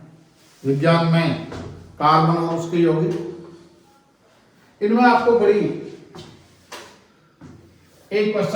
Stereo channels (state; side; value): identical; both; correlation 1.00